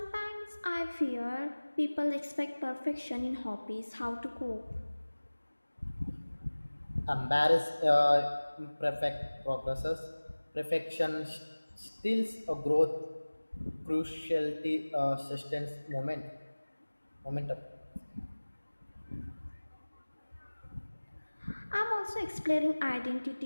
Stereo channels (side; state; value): both; inverted; correlation -1.00